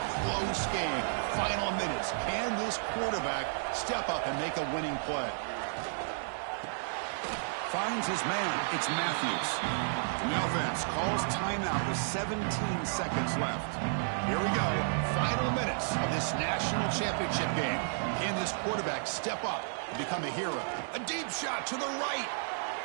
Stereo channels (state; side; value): silent; left; 56 dB below the other